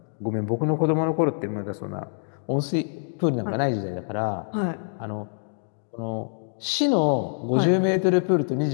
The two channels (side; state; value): right; silent; digital silence